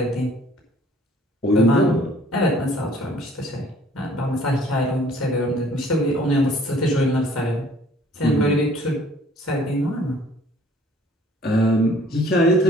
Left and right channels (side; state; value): both; normal; correlation 0.56